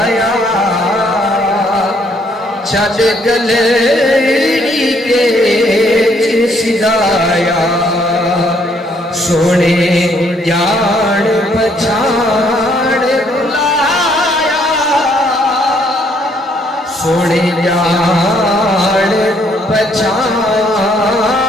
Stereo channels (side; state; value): both; normal; correlation 0.68